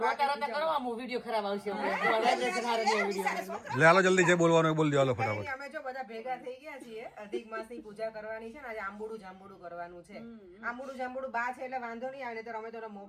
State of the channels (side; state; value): both; identical; correlation 1.00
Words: ખરાબ આવશે. લે હાલો જલ્દી જે બોલવાનું બોલ દો હાલો ફટાફટ. અમે જો બધા ભેગા થઈ ગયા છીએ અધિક માસની પૂજા કરવાની છે ને આજે આંબોડું જાંબોડું કરવાનું છે. આંબોડું જાંબોડું બા છે એટલે વાંધો નહીં આવે તો અમે તો